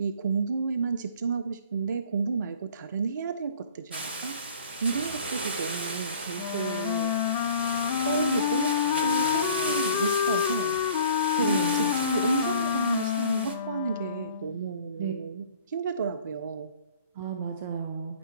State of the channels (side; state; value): both; inverted; correlation -0.48